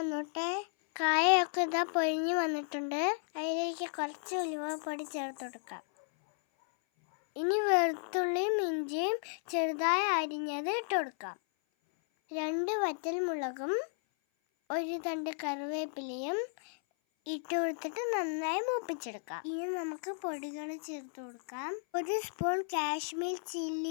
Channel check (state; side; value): silent; right; 55 dB below the other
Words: കായൊക്കെ ഇതാ പൊരിഞ്ഞു വന്നിട്ടുണ്ട്. അതിലേക്ക് കുറച്ച് ഉലുവപ്പൊടി ചേർത്ത് കൊടുക്കാം. ഇനി വെളുത്തുള്ളിയും ഇഞ്ചിയും ചെറുതായി അരിഞ്ഞത് ഇട്ട് കൊടുക്കാം. 2 വറ്റൽമുളകും 1 തണ്ട് കറിവേപ്പിലയും ഇട്ട് കൊടുത്തിട്ട് നന്നായി മൂപ്പിച്ചെടുക്കാം. ഇനി നമുക്ക് പൊടികൾ ചേർത്ത് കൊടുക്കാം. 1 സ്പൂൺ കാശ്മീർ